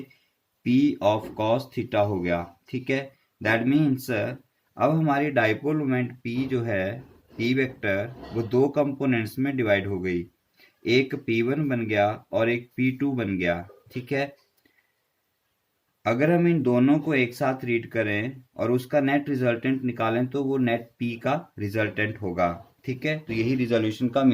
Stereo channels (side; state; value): both; identical; correlation 1.00